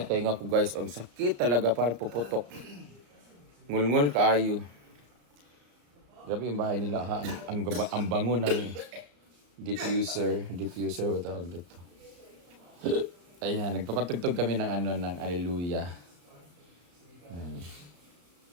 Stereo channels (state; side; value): late; left; 34 ms